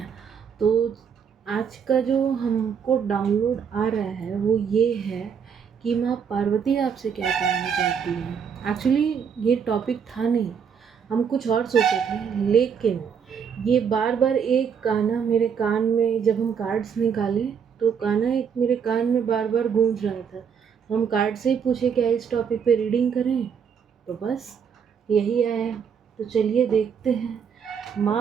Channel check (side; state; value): left; quieter; 7.1 dB